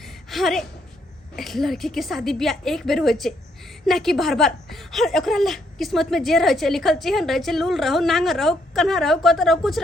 अरे लड़की के शादी ब्याह एक बेर होइ छै ना कि बार बार। हर ओकरा ला किस्मत में जे रहे छै लिखल चेहन रहे छै, लूल रहो, नांगर रहो, कन्हा रहो, कत रहो, कुछ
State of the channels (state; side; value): normal; both; correlation 0.73